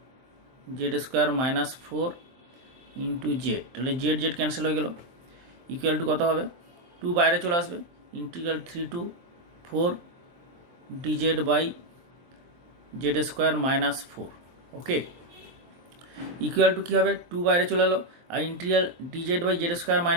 Z square minus 4 into z, তাহলে জেড জেড ক্যান্সেল হয়ে গেল, ইকুয়াল টু কত হবে 2 বাইরে চলে আসবে, integral 3 to 4 d z by Z square minus 4, okay, equal to কী হবে 2 বাইরে চলে এলো, আর integral d z by Z square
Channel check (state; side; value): late; left; 23 ms